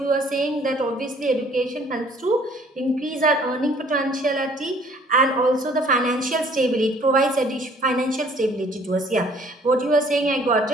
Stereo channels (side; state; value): both; normal; correlation 0.57